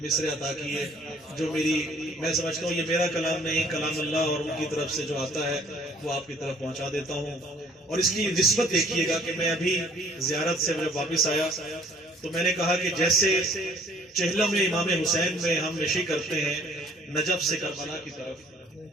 مصرے عطا کیے جو میں سمجھتا ہوں یہ میرا کلام نہیں، کلام اللہ، اور ان کی طرف سے جو آتا ہے وہ آپ کی طرف پہنچا دیتا ہوں. اور اس کی نسبت دیکھیے گا کہ میں ابھی زیارت سے جب واپس آیا تو میں نے کہا کہ جیسے چہلم امام حسین میں ہم نشی کرتے ہیں نجف سے کربلا کی طرف،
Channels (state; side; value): normal; both; correlation 0.57